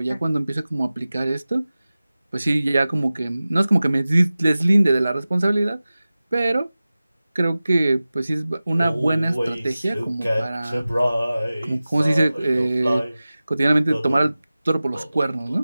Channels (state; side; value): inverted; both; correlation -0.97